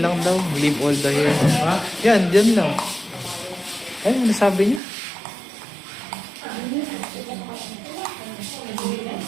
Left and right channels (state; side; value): drops out; left; at 4.8 s